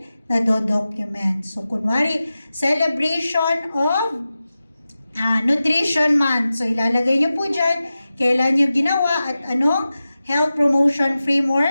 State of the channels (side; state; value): both; inverted; correlation -0.94